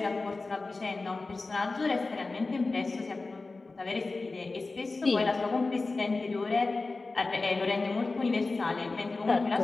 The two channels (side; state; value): right; quieter; 3.6 dB